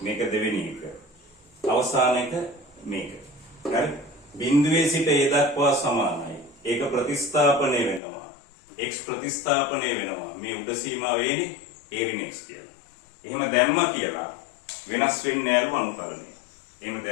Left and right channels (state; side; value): drops out; right; at 8.0 s